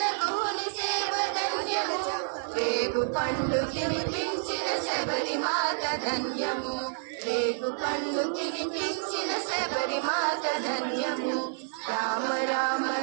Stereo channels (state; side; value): silent; left; digital silence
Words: గుహుని సేవ ధన్యము రేగు పండు తినిపించిన శబరి మాత ధన్యము రేగు పండు తినిపించిన శబరి మాత ధన్యము రామ రామ